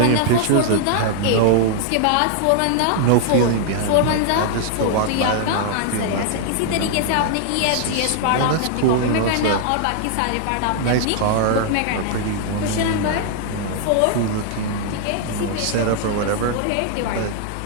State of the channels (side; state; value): both; different; correlation -0.01